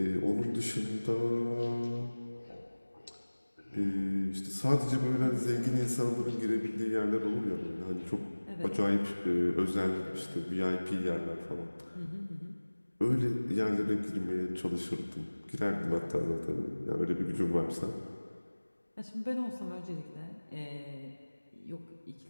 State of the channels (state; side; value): inverted; both; correlation -1.00